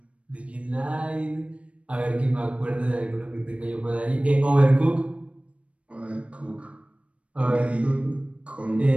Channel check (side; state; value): left; late; 0.063 ms